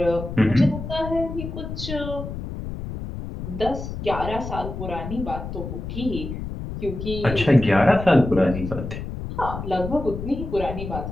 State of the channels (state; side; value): noise; left; rumble, 7 dB below the sound